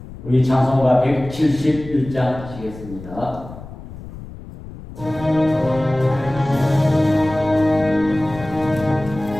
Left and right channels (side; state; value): left; noise; rumble, 14 dB below the sound